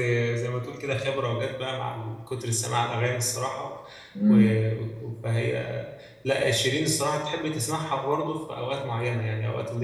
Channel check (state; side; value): identical; both; correlation 1.00